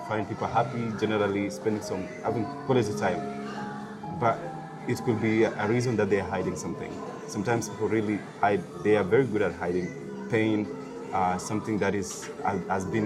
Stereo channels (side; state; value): both; identical; correlation 1.00